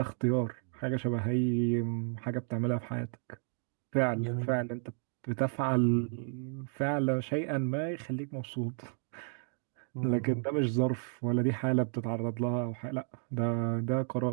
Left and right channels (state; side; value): silent; left; 56 dB below the other